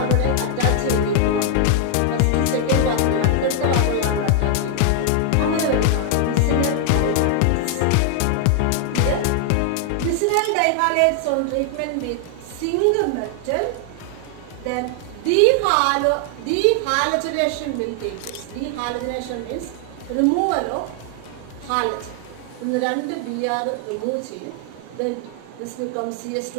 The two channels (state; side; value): different; both; correlation 0.00